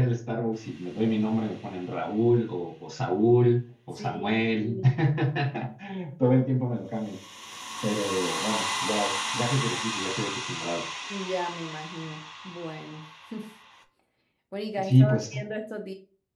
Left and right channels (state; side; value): identical; both; correlation 1.00